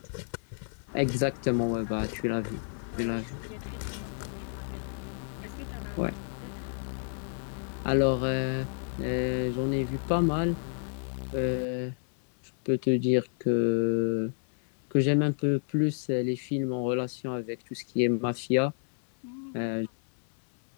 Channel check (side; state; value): right; silent; 58 dB below the other